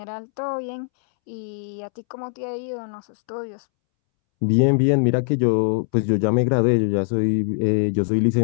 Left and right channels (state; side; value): silent; right; 64 dB below the other